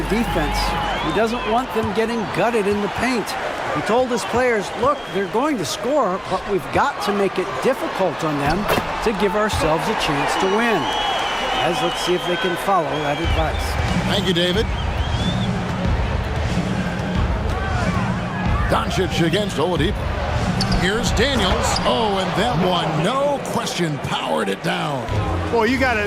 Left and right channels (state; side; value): identical; both; correlation 1.00